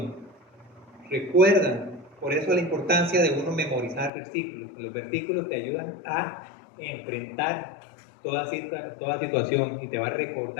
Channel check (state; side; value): drops out; right; at 4.1 s